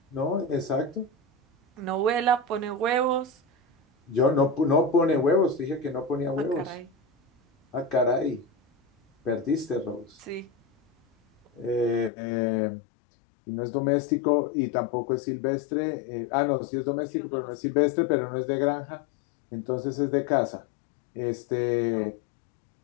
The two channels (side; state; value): right; drops out; at 12.1 s